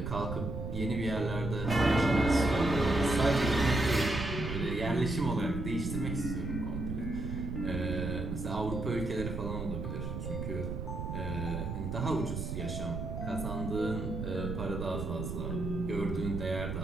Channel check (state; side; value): noise; right; rumble, 4 dB below the sound